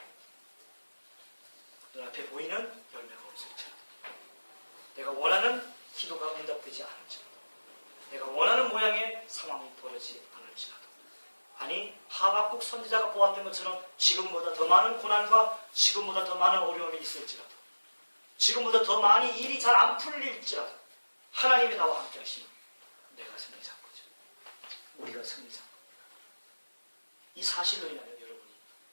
눈앞에 보이는 열매가 없을지라도, 내가 원하는 기도가 응답되지 않을지라도, 내가 원하는 모양의 상황이 벌어지지 않을지라도, 아니 하박국 선지자가 보았던 것처럼 지금보다 더 많은 고난과 지금보다 더 많은 어려움이 있을지라도, 지금보다 더 많이 일이 잘 안 풀릴지라도 하나님이 나와 함께 하시면 내가 승리자인 거죠. 우리가 승리자인 겁니다. 이 사실로 인하여 여러분이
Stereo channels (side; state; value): both; inverted; correlation -1.00